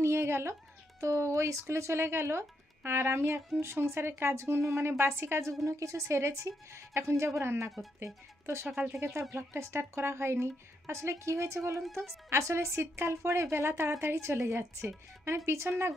নিয়ে গেল। তো ওই স্কুলে চলে গেল। আর আমি এখন সংসারের কাজগুলো মানে বাসি কাজগুলো কিছু সেরেছি, এখন যাব রান্না করতে। তো সকাল থেকে তো আর ব্লগটা স্টার্ট করা হয়নি। আসলে কি হয়েছে বলুন তো, আসলে শীতকাল পড়ে বেলা তাড়াতাড়ি চলে যাচ্ছে, মানে পিছন না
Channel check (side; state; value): both; normal; correlation 0.79